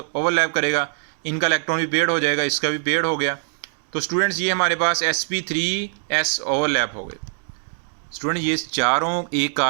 ओवरलैप करेगा, इनका इलेक्ट्रॉन भी पेयर हो जाएगा, इसका भी पेयर हो गया। तो स्टूडेंट्स, ये हमारे पास sp3s ओवरलैप हो गए। स्टूडेंट, ये चारों एक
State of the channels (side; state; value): left; silent; digital silence